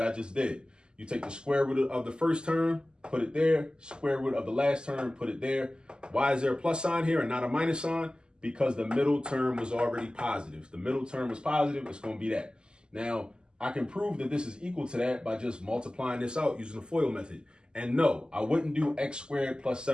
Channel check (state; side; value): late; left; 0.047 ms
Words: I just did. You take the square root of the first term, put it there. Square root of the last term, put it there. Why is there a plus sign here and not a minus sign? Because the middle term was already positive. If the middle term was positive, it's going to be that. Now, I can prove that this is equal to that by just multiplying this out using the FOIL method. And no, I wouldn't do x squared plus